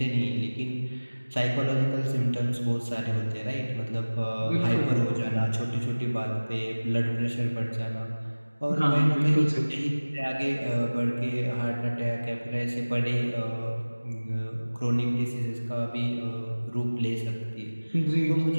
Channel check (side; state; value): both; inverted; correlation -1.00